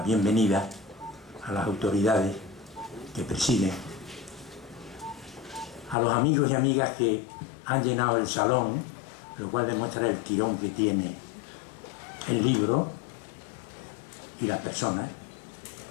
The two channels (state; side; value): drops out; right; at 6.0 s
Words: bienvenida a las autoridades que presiden, a los amigos y amigas que han llenado el salón, lo cual demuestra el tirón que tiene el libro y las personas.